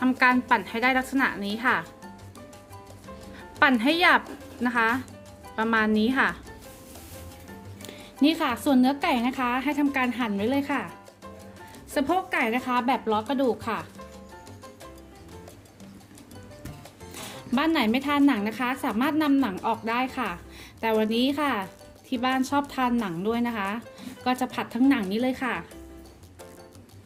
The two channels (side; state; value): both; identical; correlation 1.00